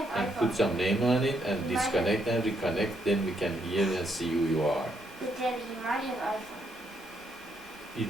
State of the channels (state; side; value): normal; both; correlation 0.75